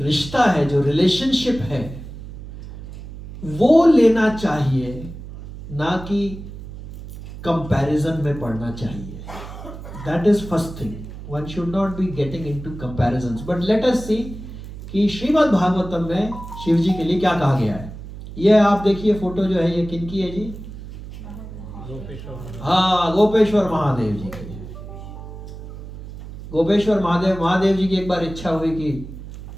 है, जो रिलेशनशिप है, वो लेना चाहिए, ना कि कंपैरिजन में पड़ना चाहिए. That is first thing. One should not be getting into comparisons. But let us see कि श्रीमद् भागवतम में शिव जी के लिए क्या कहा गया है. ये आप देखिए फोटो जो है, ये किन की है जी? हाँ, गोपेश्वर महादेव जी की. गोपेश्वर महादेव जी की एक बार इच्छा हुई कि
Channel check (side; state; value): right; noise; hum, 12 dB below the sound